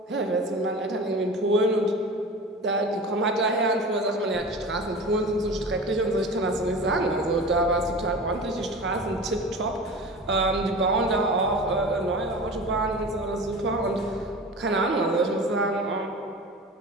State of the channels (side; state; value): both; normal; correlation 0.34